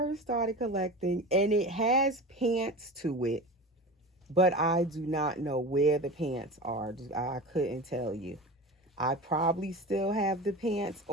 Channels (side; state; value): both; normal; correlation 0.31